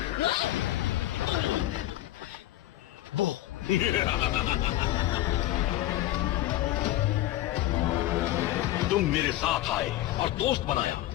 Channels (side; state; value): right; quieter; 14.9 dB